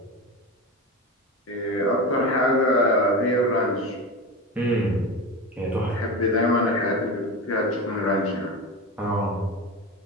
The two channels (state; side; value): normal; both; correlation 0.24